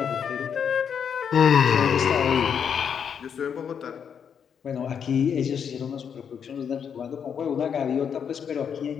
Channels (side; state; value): right; quieter; 7.5 dB